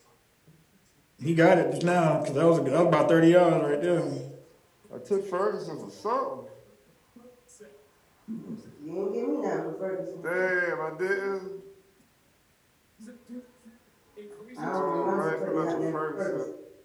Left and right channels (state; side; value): identical; both; correlation 1.00